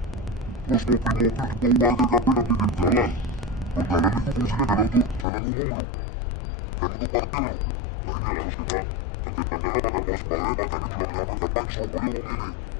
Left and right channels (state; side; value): drops out; right; at 5.2 s